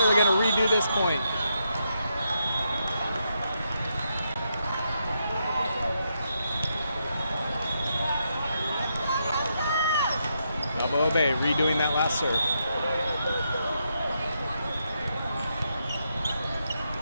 going to redo this point. Balboa Bay redoing that last serve.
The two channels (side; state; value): both; inverted; correlation -0.81